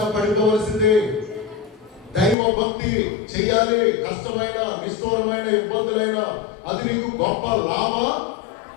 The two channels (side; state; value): right; drops out; at 2.4 s